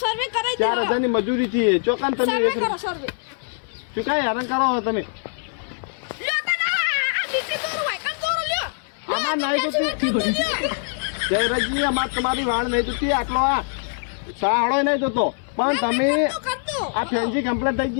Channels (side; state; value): right; silent; digital silence